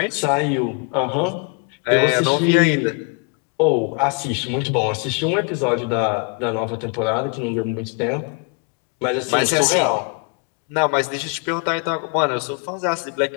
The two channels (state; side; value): quieter; right; 36.4 dB